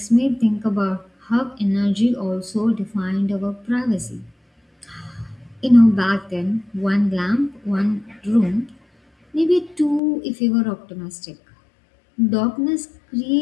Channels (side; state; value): right; drops out; at 10.0 s